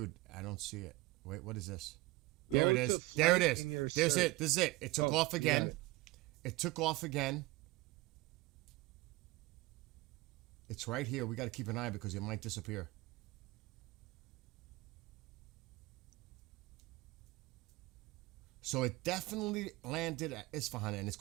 I don't see it. Wait, what is this? There it is. There it is. There's it. This is it. It took off again. It took off again. It's right here. We got to keep an eye because it might disappear. So it definitely landed at Isfahan and it's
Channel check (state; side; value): quieter; left; 20.7 dB